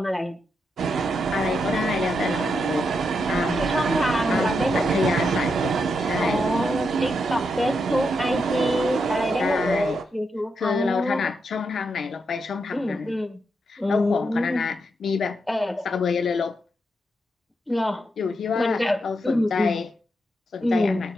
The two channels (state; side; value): normal; both; correlation 0.83